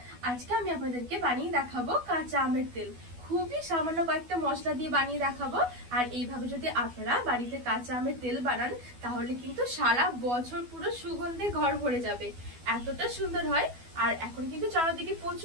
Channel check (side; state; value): left; late; 12 ms